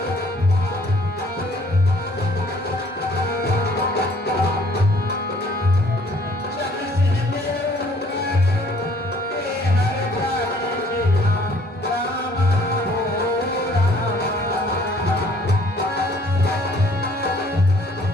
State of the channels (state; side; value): normal; both; correlation 0.59